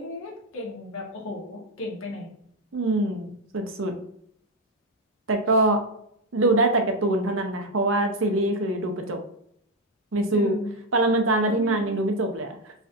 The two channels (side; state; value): both; normal; correlation 0.06